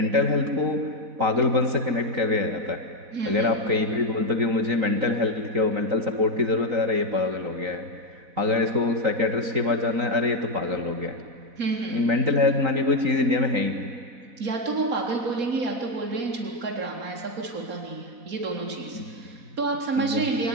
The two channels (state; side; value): late; left; 3.9 ms